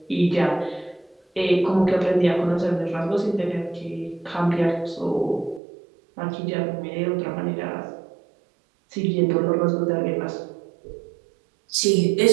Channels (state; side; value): drops out; left; at 5.6 s